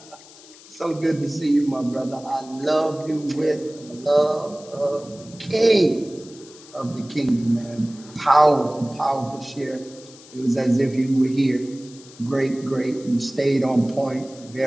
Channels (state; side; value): noise; left; hiss, 21 dB below the sound